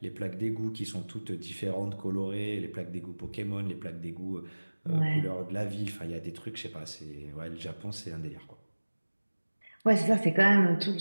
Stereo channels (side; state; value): both; inverted; correlation -1.00